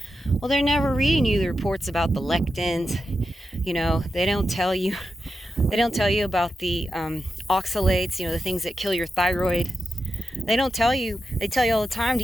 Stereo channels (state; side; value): normal; both; correlation 0.89